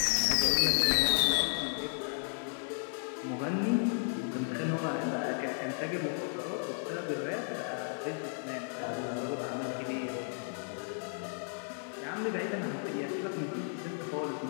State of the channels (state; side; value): silent; right; 55 dB below the other